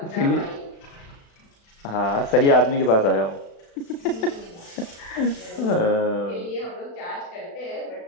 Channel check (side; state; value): right; late; 36 ms